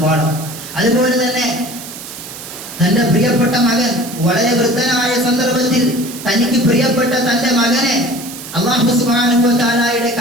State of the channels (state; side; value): noise; right; hiss, 12 dB below the sound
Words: പാഠം. അതുപോലെ തന്നെ തന്റെ പ്രിയപ്പെട്ട മകൻ വളരെ വൃദ്ധനായ സന്ദർഭത്തിൽ തനിക്ക് പ്രിയപ്പെട്ട തന്റെ മകനെ അല്ലാഹു സുബ്ഹാനഹു വ തആലയുടെ